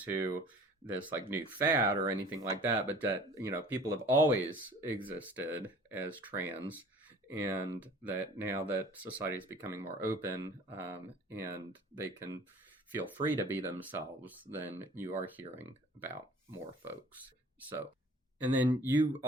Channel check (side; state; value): both; normal; correlation 0.48